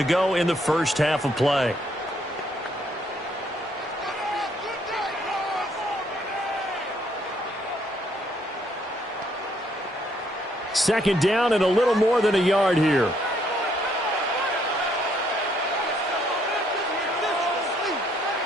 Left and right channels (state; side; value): normal; both; correlation 0.69